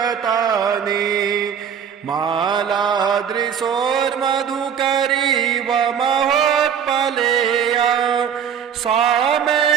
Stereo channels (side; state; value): left; quieter; 8.0 dB